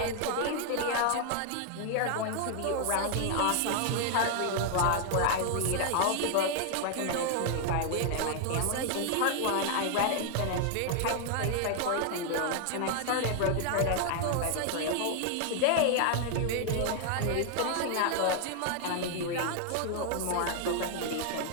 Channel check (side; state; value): both; different; correlation 0.00